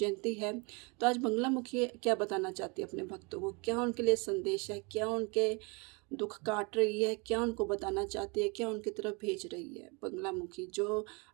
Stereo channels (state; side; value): quieter; left; 30.4 dB